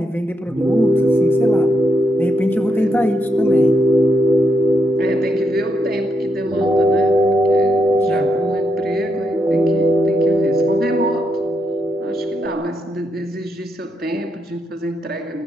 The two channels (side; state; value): both; normal; correlation 0.81